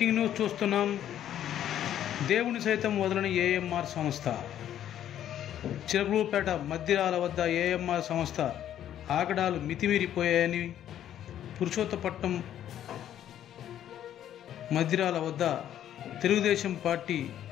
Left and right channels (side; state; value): right; quieter; 10.9 dB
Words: news చూస్తున్నాం. దేవుని సైతం వదలని ఏఎంఆర్ సంస్థ. చిలకలూరుపేట మద్దిరాల వద్ద ఏఎంఆర్ సంస్థ ఆగడాలు మితిమీరిపోయాయని పురుషోత్తపట్నం మద్దిరాల వద్ద తెలుగుదేశం పార్టీ